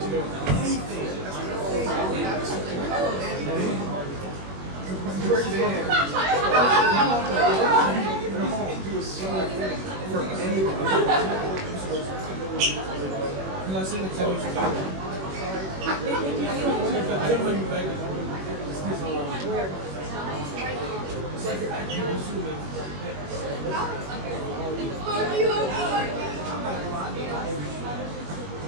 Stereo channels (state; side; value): late; left; 21 ms